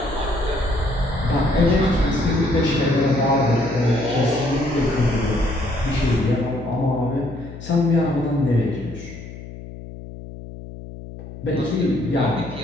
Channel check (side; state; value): left; noise; hum, 13 dB below the sound